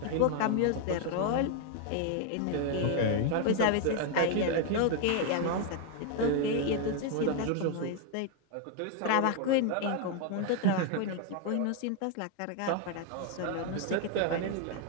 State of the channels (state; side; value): different; both; correlation 0.01